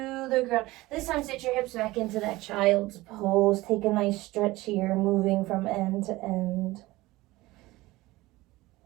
the ground. This time sit your hips back into that child's pose. Take a nice stretch here, moving from end to end.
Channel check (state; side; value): quieter; left; 19.2 dB